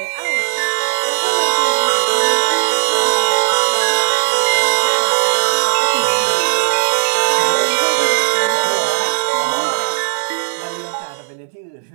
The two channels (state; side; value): silent; left; 64 dB below the other